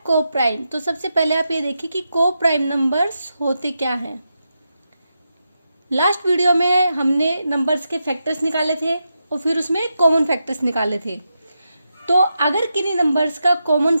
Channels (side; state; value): both; inverted; correlation -0.87